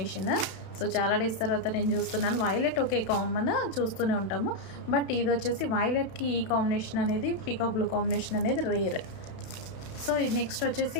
సో చాలా డేస్ తర్వాత నేను చూస్తున్నాను. వైలెట్ ఓకే కామన్ చూస్తూనే ఉంటాము, బట్ ఇది వచ్చేసి వైలెట్కి ఈ కాంబినేషన్ అనేది, పీకాక్ బ్లూ కాంబినేషన్ అనేది రేర్. సో నెక్స్ట్ వచ్చేసి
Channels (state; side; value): late; right; 32 ms